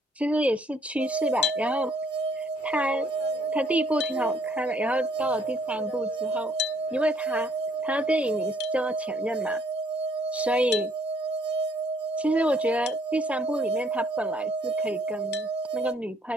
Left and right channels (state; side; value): normal; both; correlation 0.65